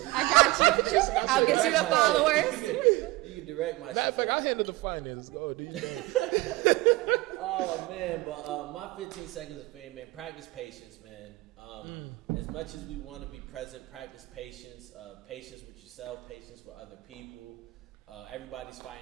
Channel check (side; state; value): left; quieter; 20.8 dB